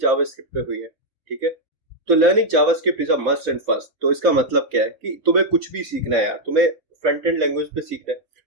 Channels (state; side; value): late; left; 3.6 ms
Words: जावास्क्रिप्ट पे हुई है। ठीक है। तो learning JavaScript is a must and first. तो इसका मतलब क्या है कि तुम्हें कुछ भी सीखना है यार, तुम्हें फ्रंट एंड लैंग्वेज पे सीखना है,